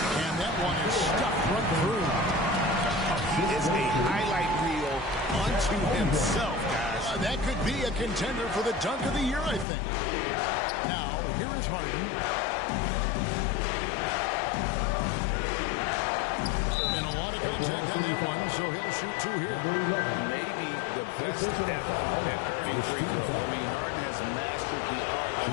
And that one is stuffed right through. He is a highlight reel unto himself, guys. That could be a contender for the dunk of the year, I think. Now, here is Harden. And a lot of contact on that one, so he'll shoot two here. Maybe the best ever at earning free throw. I mean, Harden has mastered the art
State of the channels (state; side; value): drops out; right; at 9.7 s